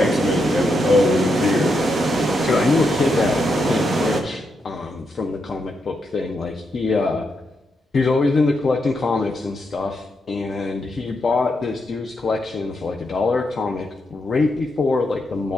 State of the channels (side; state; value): both; normal; correlation 0.82